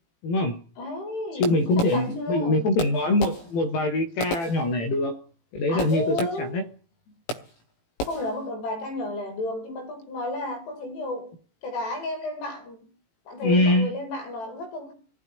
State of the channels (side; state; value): right; late; 18 ms